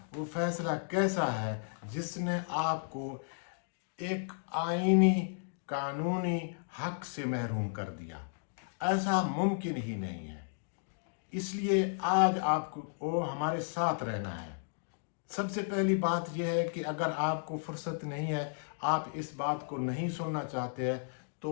वो फैसला कैसा है जिसने आपको एक आइनी कानूनी हक से महरूम कर दिया। ऐसा मुमकिन ही नहीं है। इसलिए आज आपको हमारे साथ रहना है। सबसे पहली बात यह है कि अगर आपको फुर्सत नहीं है, आप इस बात को नहीं सुनना चाहते हैं,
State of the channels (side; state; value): right; silent; digital silence